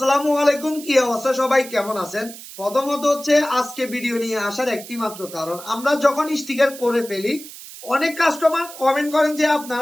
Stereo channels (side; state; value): right; noise; hiss, 15 dB below the sound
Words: আলাইকুম, কি অবস্থা? সবাই কেমন আছেন? প্রথমত হচ্ছে আজকে ভিডিও নিয়ে আসার একটি মাত্র কারণ, আমরা যখন স্টিকার করে ফেলি অনেক কাস্টমার কমেন্ট করেন যে